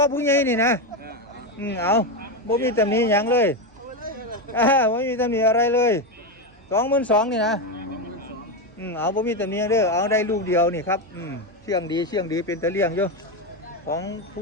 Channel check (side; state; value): both; normal; correlation 0.11